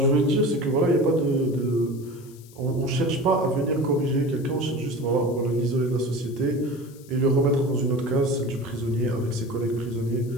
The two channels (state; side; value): noise; left; hiss, 24 dB below the sound